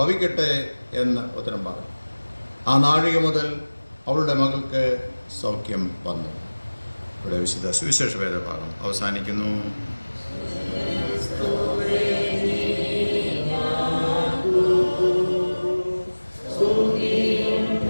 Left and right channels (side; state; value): both; inverted; correlation -1.00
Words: എന്ന് ഉത്തരം പറഞ്ഞു. ആ നാഴിക മുതൽ അവളുടെ മകൾക്ക് സൗഖ്യം വന്നു. ഇവിടെ വിശുദ്ധ സുവിശേഷ വേദഭാഗം അവസാനിക്കുന്നു.